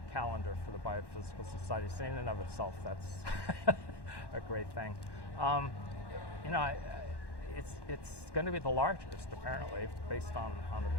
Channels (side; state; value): right; late; 1.1 ms